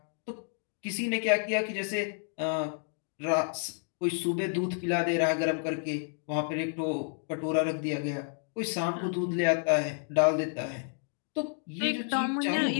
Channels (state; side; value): silent; right; 57 dB below the other